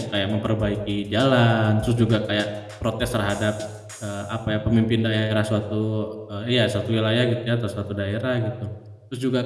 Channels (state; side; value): identical; both; correlation 1.00